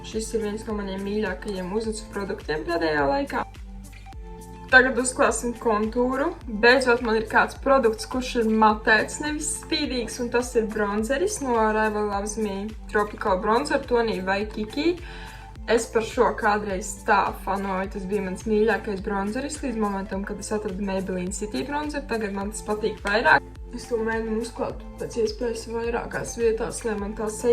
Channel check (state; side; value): identical; both; correlation 1.00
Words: šis ir viens no maniem mīļākajiem uzacu produktiem pēdējā laikā. Tagad uzklāsim kontūru. Beidzot man ir kāds produkts, kurš ir matēts, nevis spīdīgs, un tas ir bronzeris no Rival Loves Me Tropical Bronzer tonī Waikiki. Es par šo kādreiz tā fanoju, tas bija mans mīļākais bronzeris līdz momentam, kad es atradu Maybelline City bronzer. Tagad man tas patīk vairāk. Es to mēģinu uzklāt pēc iespējas vairākās vietās, lai man tā